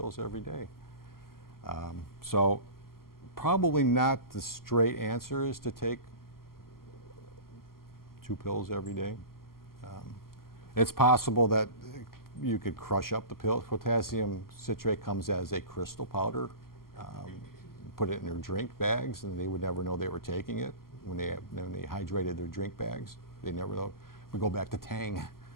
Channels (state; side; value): late; right; 0.92 ms